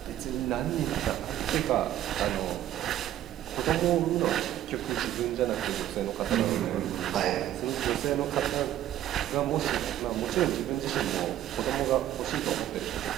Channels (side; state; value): left; quieter; 12.4 dB